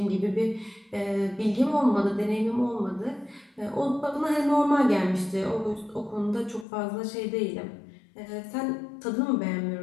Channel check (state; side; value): drops out; right; at 6.7 s